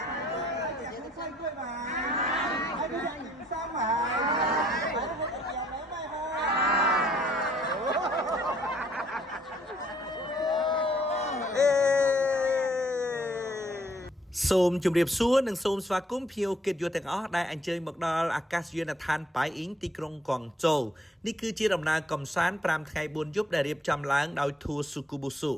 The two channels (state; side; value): normal; both; correlation 0.65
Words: 食蔬菜粿嘛，来食盐山嘛，来我食盐梅嘛សូមជម្រាបសួរនិងសូមស្វាគមន៍ភ្ញៀវកិត្តិយសទាំងអស់ដែលអញ្ជើញមកដល់អាកាសយានដ្ឋានប៉ៃអ៊ីងទីក្រុងកួងជូនេះគឺជាដំណើរកំសាន្ត5ថ្ងៃ4យប់ដែលរៀបចំឡើងដោយ Tour Sukubusu